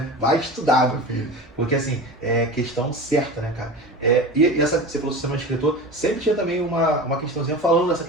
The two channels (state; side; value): normal; both; correlation 0.31